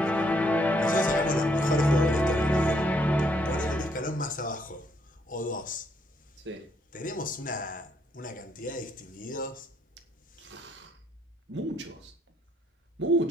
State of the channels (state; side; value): normal; both; correlation 0.71